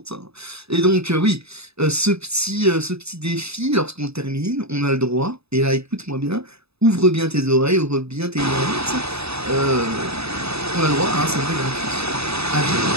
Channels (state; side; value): late; left; 0.79 ms